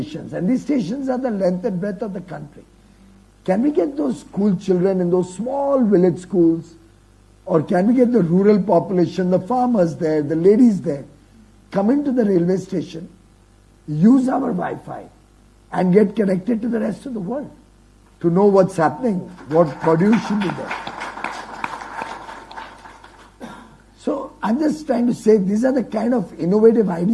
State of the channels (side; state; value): both; identical; correlation 1.00